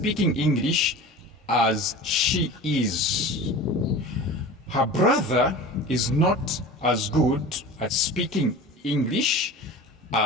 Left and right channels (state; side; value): normal; both; correlation 0.36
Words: English as she is. Her brother is not as good at speaking English